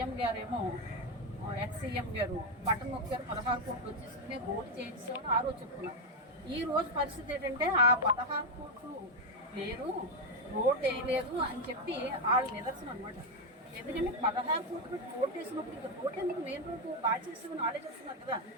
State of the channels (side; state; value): both; normal; correlation 0.05